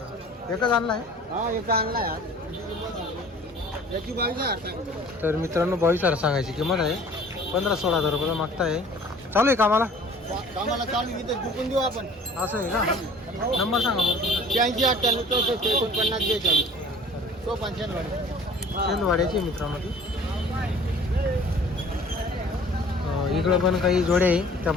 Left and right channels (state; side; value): normal; both; correlation 0.49